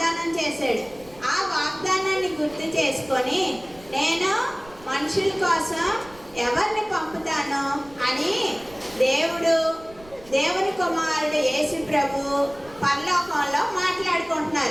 చేశాడు. ఆ వాగ్దానాన్ని గుర్తు చేసుకొని నేను మనుషుల కోసం ఎవరిని పంపుతాను అని దేవుని కుమారుడు యేసు ప్రభు పరలోకంలో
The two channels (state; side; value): noise; right; rumble, 23 dB below the sound